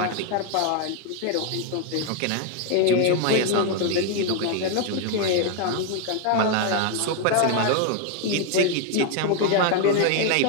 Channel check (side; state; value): both; different; correlation 0.01